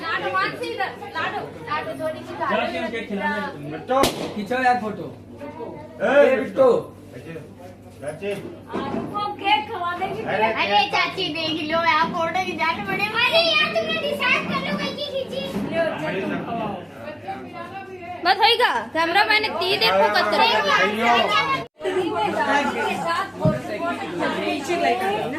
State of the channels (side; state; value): both; identical; correlation 1.00